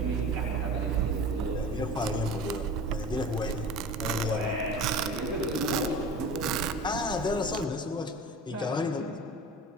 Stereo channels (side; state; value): both; normal; correlation 0.36